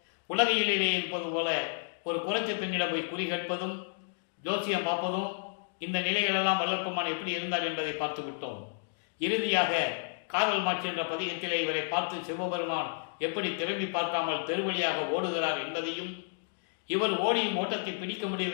உலகையிலே இருப்பது போல ஒரு குறைச்ச பெண்ணிடம் போய் குறி கேட்பதும் ஜோசியம் பார்ப்பதும் இந்த நிலைகளெல்லாம் வல்லப்பமான் எப்படி இருந்தார் என்பதை பார்த்து விட்டோம். இறுதியாக காதல் மாட்சி என்ற பதிகத்திலே இவரை பார்த்து சிவபெருமான் எப்படி திரும்பி பார்க்காமல் தெருவழியாக ஓடுகிறார் என்பதையும், இவர் ஓடியும் ஓட்டத்தை பிடிக்க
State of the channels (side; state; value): right; silent; digital silence